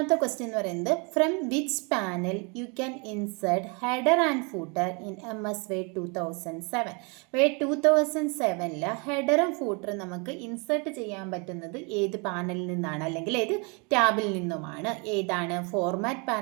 ക്വസ്റ്റ്യൻ എന്ന് പറയുന്നത്, from which panel you can insert header and footer in MS Word 2007. Word 2007 ഹെഡറും ഫൂട്ടറും നമുക്ക് ഇൻസേർട്ട് ചെയ്യാൻ പറ്റുന്നത് ഏത് പാനലിൽ നിന്നാണ്, അല്ലെങ്കിൽ ഏത് ടാബിൽ നിന്നുമാണ്? ഏതാണ്? ഫോർമാറ്റ്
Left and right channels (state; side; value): quieter; left; 32.5 dB